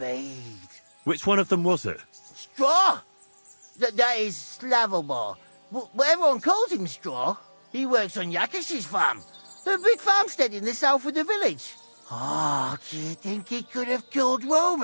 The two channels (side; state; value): both; inverted; correlation -1.00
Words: Which one of them was it? Straw! That is Slavomir. But everyone calls him Straw. He works on Yakish's farm. The big farmstead in the south of the village. Oh, do you think he could have killed